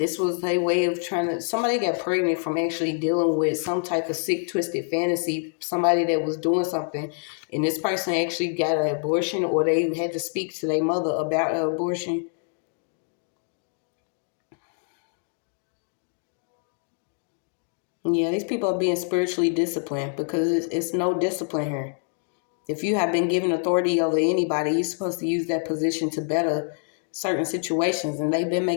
was a way of somebody got pregnant from actually dealing with some type of sick, twisted fantasy, somebody that was doing something, and this person actually got an abortion, or they had to speak to their mother about an abortion. Yeah, these people are being spiritually disciplined because it's no discipline here. If you have been given authority over anybody, you're supposed to use that position to better certain situations, and they've been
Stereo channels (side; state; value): right; silent; 56 dB below the other